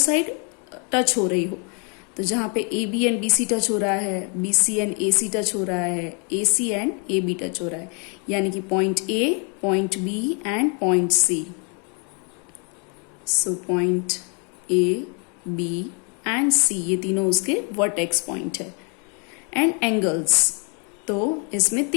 टच हो रही हो, तो जहां पे AB एंड BC टच हो रहा है, BC एंड AC टच हो रहा है, AC एंड AB टच हो रहा है, यानी कि point A, point B and point C। So point A, B and C, ये तीनों उसके वर्टेक्स पॉइंट है। एंड एंगल्स, तो इसमें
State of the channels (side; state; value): right; quieter; 36.9 dB